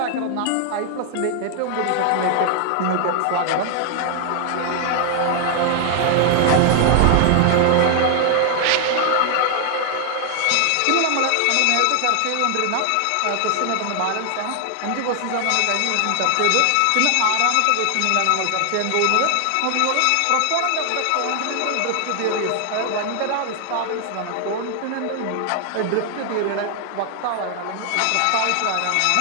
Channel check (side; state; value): both; different; correlation 0.00